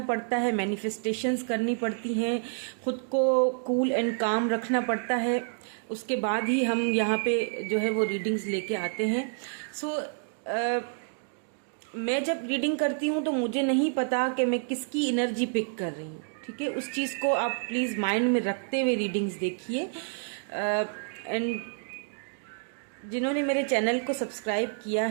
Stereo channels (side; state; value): left; silent; 59 dB below the other